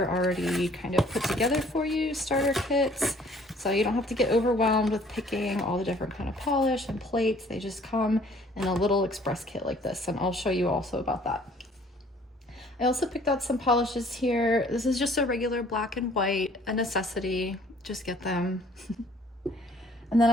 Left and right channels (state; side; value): normal; both; correlation 0.57